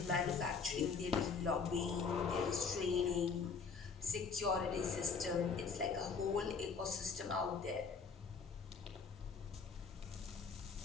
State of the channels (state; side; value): quieter; right; 5.4 dB